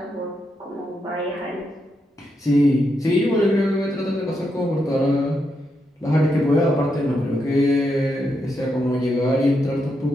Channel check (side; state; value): both; normal; correlation 0.82